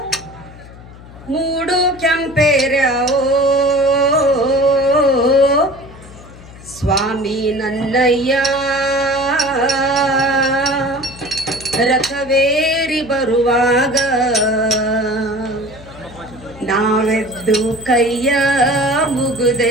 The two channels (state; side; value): noise; left; hum, 19 dB below the sound